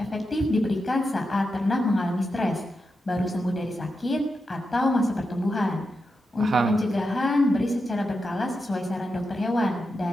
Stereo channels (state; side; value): normal; both; correlation 0.88